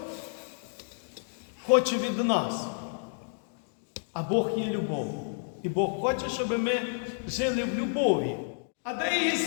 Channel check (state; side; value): silent; right; digital silence